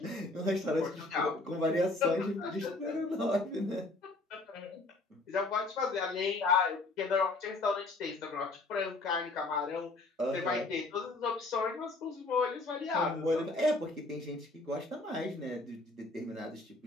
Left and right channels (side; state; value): right; quieter; 3.1 dB